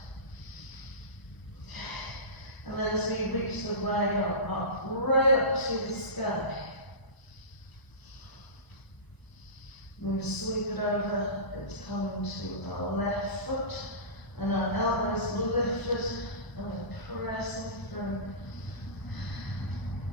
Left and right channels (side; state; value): right; late; 1.0 ms